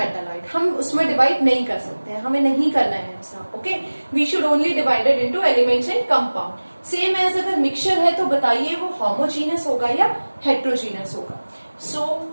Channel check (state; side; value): inverted; both; correlation -1.00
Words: हम उसमें डिवाइड नहीं कर सकते हैं, हमें नहीं करना है ऐसा. Okay, we should only divided into elements and compound. Same as अगर मिक्सचर है तो बताइए वो होमोजीनियस होगा या हेट्रोजीनियस होगा. So